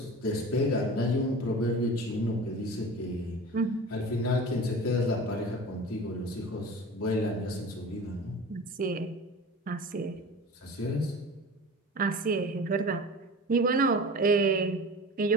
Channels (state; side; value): normal; both; correlation 0.36